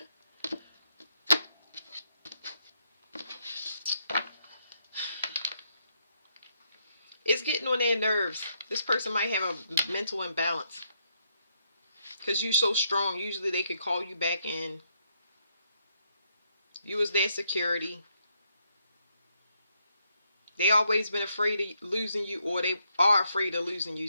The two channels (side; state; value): both; inverted; correlation -0.76